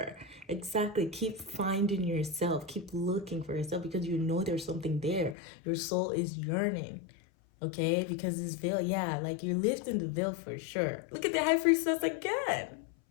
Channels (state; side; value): drops out; right; at 5.4 s